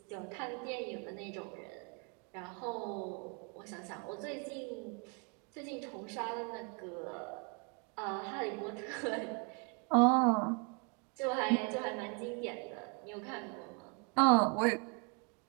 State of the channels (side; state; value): left; quieter; 35.9 dB